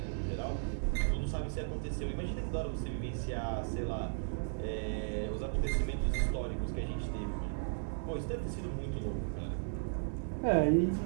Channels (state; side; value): silent; left; 54 dB below the other